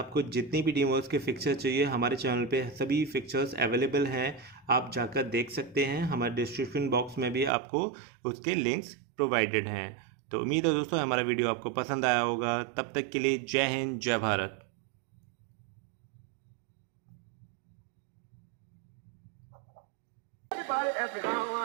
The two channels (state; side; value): drops out; left; at 7.5 s